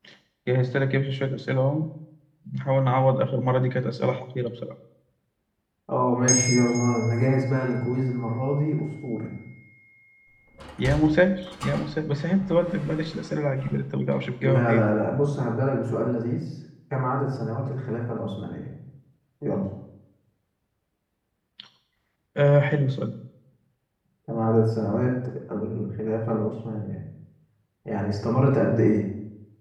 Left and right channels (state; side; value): identical; both; correlation 1.00